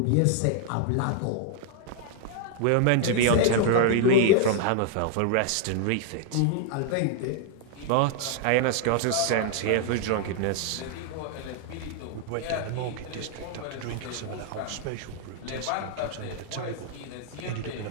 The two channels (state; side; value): different; both; correlation 0.00